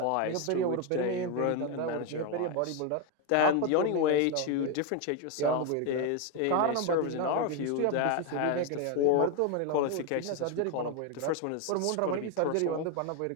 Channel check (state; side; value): different; both; correlation 0.01